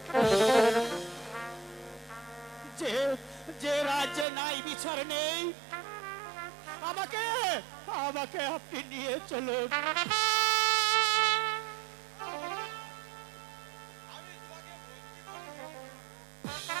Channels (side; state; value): left; drops out; at 4.2 s